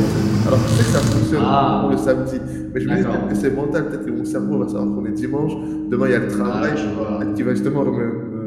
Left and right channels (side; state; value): both; identical; correlation 1.00